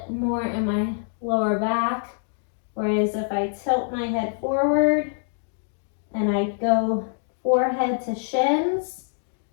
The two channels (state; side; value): silent; right; digital silence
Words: more in my lower back. Whereas if I tilt my head forward and I go forehead to shins,